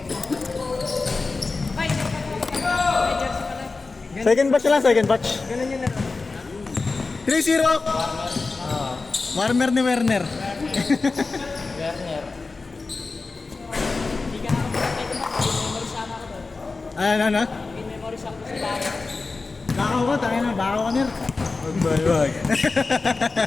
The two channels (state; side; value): quieter; right; 3.9 dB